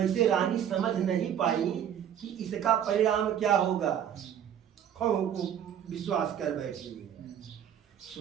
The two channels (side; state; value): left; quieter; 9.5 dB